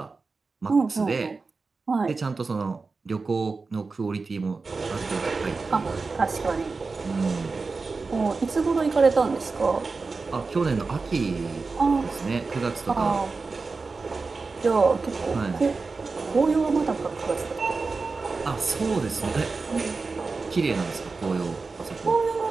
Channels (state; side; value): quieter; left; 4.2 dB